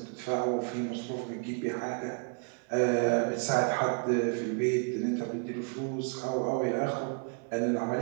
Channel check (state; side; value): quieter; left; 37.3 dB